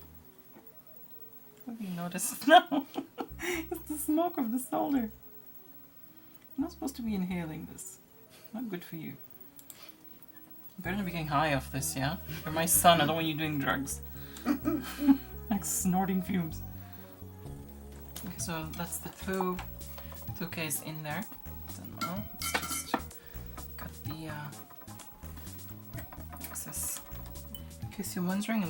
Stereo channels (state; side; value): identical; both; correlation 1.00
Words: What have you noticed now? It's the smoke of the solder. I'm not supposed to be inhaling this. Not good for you. You better not be getting high off this, yeah? You're my son, I don't want you doing drugs. Like snorting fumes. Okay, so that's the 2Ks in there. So now let's just cut the excess. In case you're wondering,